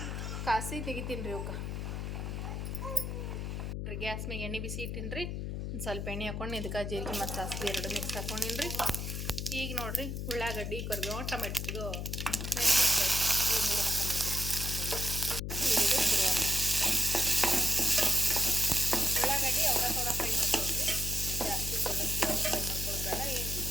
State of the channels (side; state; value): left; noise; hum, 4 dB below the sound